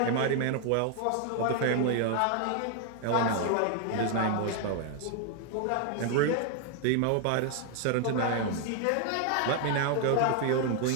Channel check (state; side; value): different; both; correlation 0.00